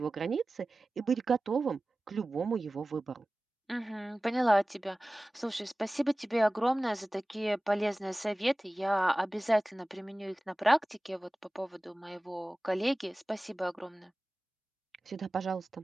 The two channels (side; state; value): both; normal; correlation 0.97